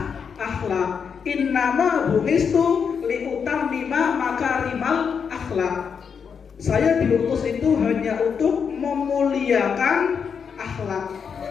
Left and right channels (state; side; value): quieter; right; 6.5 dB